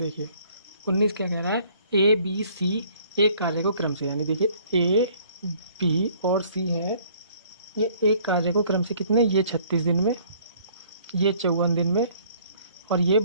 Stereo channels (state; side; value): inverted; both; correlation -0.58